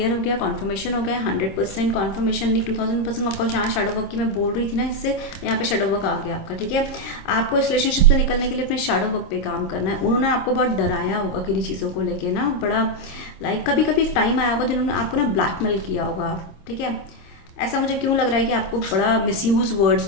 हो गया, कॉन्फर्मेशन हो गया। 100% कॉन्फर्मेशन नहीं, 2000% आपको यहाँ शैडो वर्क की मैं बोल रही थी ना, इससे यहाँ पे शैडो वर्क आ गया आपका, ठीक है। आपको इस रिलेशनशिप से निकलने के लिए अपने शैडो वर्क पे काम करना है। उन्होंने आपको बहुत डराया होगा किन्हीं चीज़ों को लेके ना, बड़ा लाइक कभी कभी एक टाइम आया होगा जिन्होंने आपको ना ब्लैकमेल किया होगा, ठीक है। ऐसा मुझे क्यों लग रहा है कि आपको बड़ा मिसयूज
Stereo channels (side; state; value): right; late; 26 ms